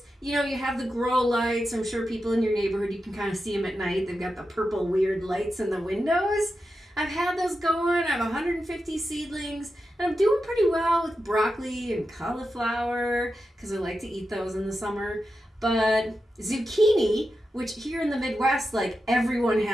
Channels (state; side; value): normal; both; correlation 0.90